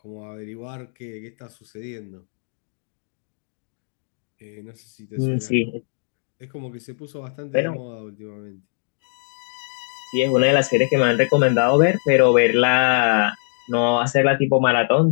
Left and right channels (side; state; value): right; silent; digital silence